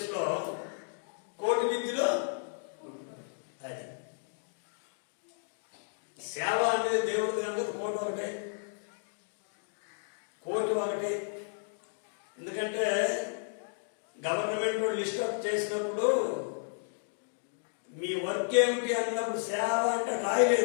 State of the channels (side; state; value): right; silent; digital silence